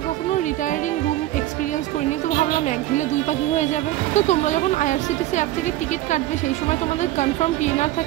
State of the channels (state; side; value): quieter; left; 15.2 dB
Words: কখনো রিটায়ারিং রুম এক্সপিরিয়েন্স করিনি, তো ভাবলাম এক ঢিলে দুই পাখি হয়ে যাবে। তো তোমরা যখন আইআরসিটিসি অ্যাপ থেকে টিকিট কাটবে সেই সময় তোমাদের কনফার্ম পিএনআর